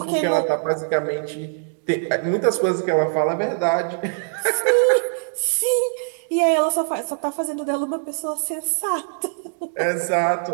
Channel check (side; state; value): left; silent; digital silence